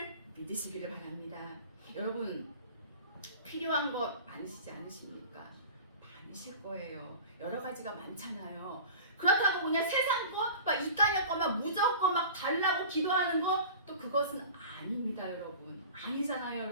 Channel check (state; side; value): inverted; both; correlation -0.39